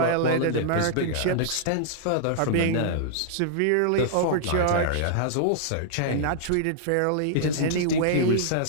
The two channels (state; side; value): different; both; correlation -0.01